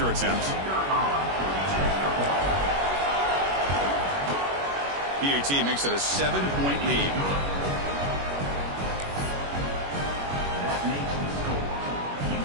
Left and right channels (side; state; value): left; late; 21 ms